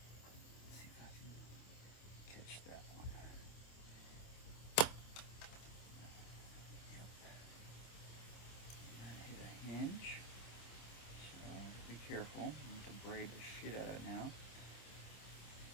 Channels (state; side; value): late; right; 26 ms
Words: See if I can catch that one. Yep. And hit a hinge. So I have to be careful. I have to braid the shit out of it now.